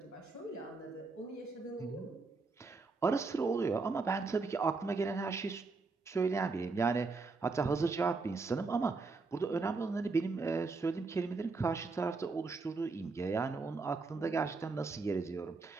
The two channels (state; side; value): quieter; left; 4.1 dB